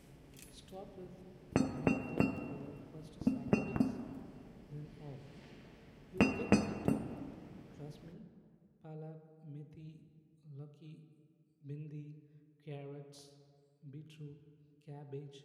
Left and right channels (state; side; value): identical; both; correlation 1.00